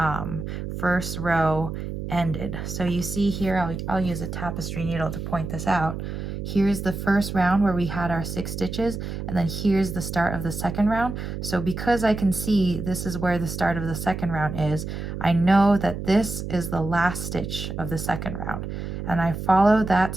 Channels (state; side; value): noise; right; hum, 6 dB below the sound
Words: first row ended. So you see here, I'll use a tapestry needle to point this out. Here's the first round where we had our 6 stitches, and then here's the start of the second round. So because I can see this is where the start of the second round is, I know that this is the last stitch of the second round. And I follow that